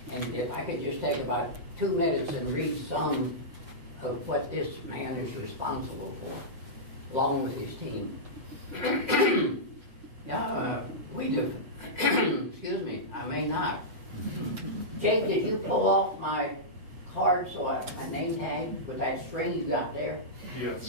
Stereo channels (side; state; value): left; late; 8.1 ms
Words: And if I could just take about 2 minutes and read some of what this man is responsible for, along with his team. We do. Excuse me, I may not. Jake, did you pull off my card, my name tag, with that string you got there?